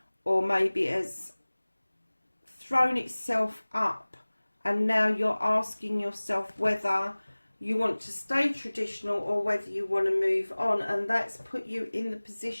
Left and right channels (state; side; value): inverted; both; correlation -1.00